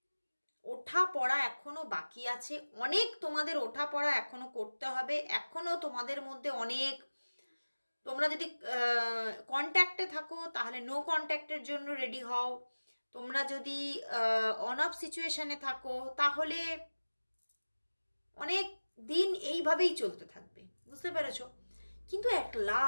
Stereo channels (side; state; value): both; inverted; correlation -1.00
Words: ওঠা পড়া এখনো বাকি আছে, অনেক তোমাদের ওঠা পড়া এখনো করতে হবে, এখনো তোমাদের মধ্যে অনেক, তোমরা যদি কন্ট্যাক্টে থাকো তাহলে নো কন্ট্যাক্টের জন্য রেডি হও, তোমরা যদি অন অফ সিচুয়েশনে থাকো তাহলে অনেক দিন এইভাবেই চলতে থাকবে, বুঝতে পেরেছো? কিন্তু অ্যাট